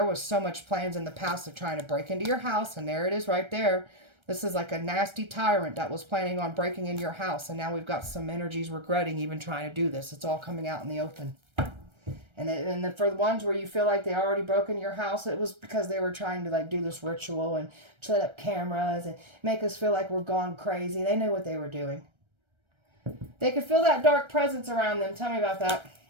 was so much plans in the past of trying to break into your house, and there it is right there. This is like a nasty tyrant that was planning on breaking into your house, and now we've got some energies regretting even trying to do this. It's all coming out in the open. And then for the ones where you feel like they already broke into your house, it was because they were trying to like do this ritual and set up cameras and make us feel like we're gone crazy. They knew what they were doing. They could feel that dark presence around them. Tell me about that.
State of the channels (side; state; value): left; late; 1.3 ms